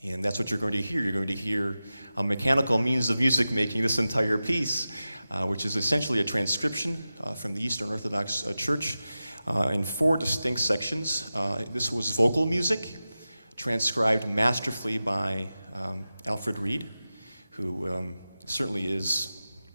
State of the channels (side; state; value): both; inverted; correlation -0.94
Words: that's what you're going to hear. You're going to hear a mechanical means of music making this entire piece, which is essentially a transcription from the Eastern Orthodox Church in 4 distinct sections. This was vocal music, transcribed masterfully by Alfred Reed, who certainly is